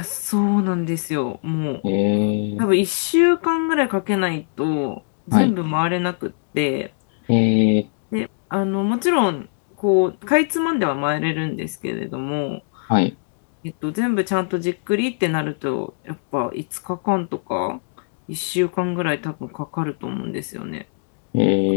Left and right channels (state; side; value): silent; right; digital silence